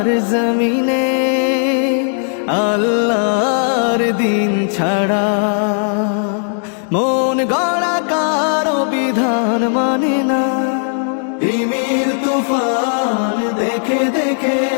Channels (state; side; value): silent; right; 69 dB below the other